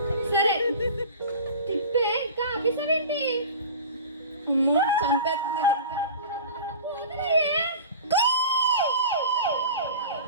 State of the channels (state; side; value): inverted; both; correlation -0.37